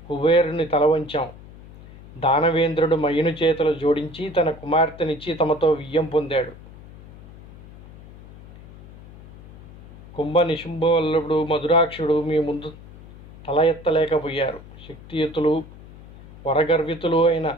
కుబేరుని తల వంచాం, దానవేంద్రుడు మయుని చేతులు జోడించి తన కుమార్తెనిచ్చి తమతో వియ్యం పొందాడు. కుంభ నిశుంభవల్లుడు మధురాక్షుడు మీ ముందు తల ఎత్తలేకపోయారు. శక్తియుతులు వరగర్వితులు అయిన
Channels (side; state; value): left; noise; hum, 19 dB below the sound